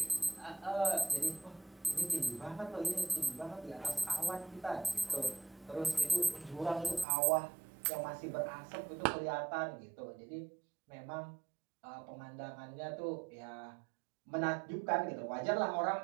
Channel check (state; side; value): drops out; left; at 7.1 s